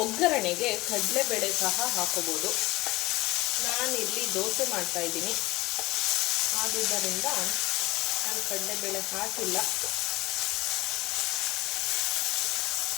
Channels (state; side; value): quieter; right; 20.4 dB